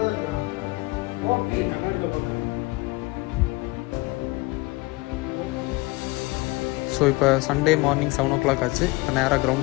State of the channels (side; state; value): right; quieter; 23.2 dB